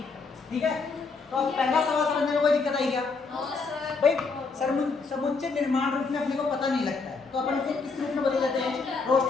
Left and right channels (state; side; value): quieter; right; 4.4 dB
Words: ठीक है, तो अब पहला सवाल समझने में कोई दिक्कत आई क्या भाई? समुच्चय निर्माण रूप में अपने को पता नहीं लगता है, तो अपन उसे किस रूप में बदल देते हैं?